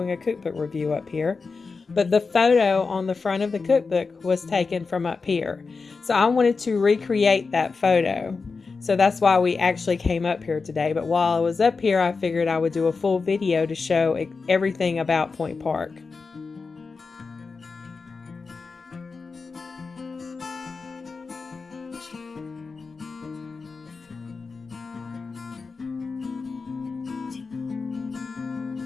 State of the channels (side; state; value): right; quieter; 4.5 dB